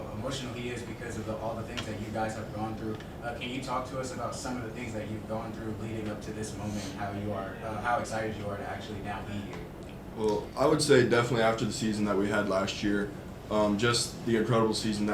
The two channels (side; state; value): both; identical; correlation 1.00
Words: emotional he is because of all the things that you guys have gone through. Can you talk to us about some of the things that you've gone through leading up to this moment, and how excited you are to actually now be here? Well, I would say definitely after the season that we had last year, just the incredible season